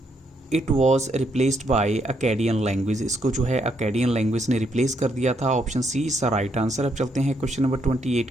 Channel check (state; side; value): normal; both; correlation 0.75